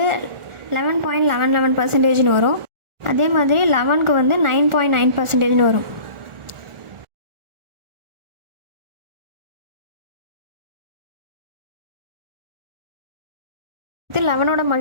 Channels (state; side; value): late; left; 1.4 ms